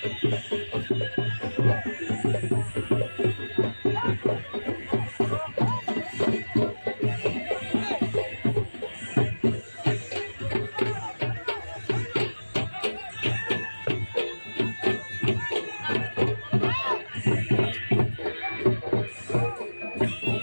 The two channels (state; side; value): inverted; both; correlation -1.00